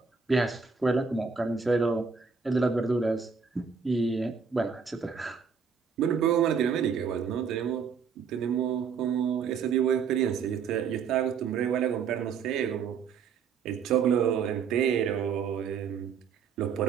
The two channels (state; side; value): quieter; left; 6.1 dB